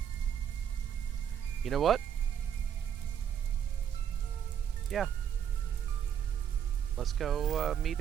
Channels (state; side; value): quieter; left; 8.9 dB